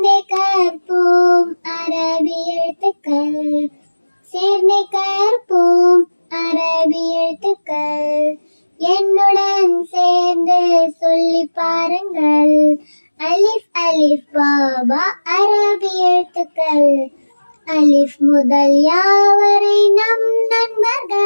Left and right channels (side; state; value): both; inverted; correlation -1.00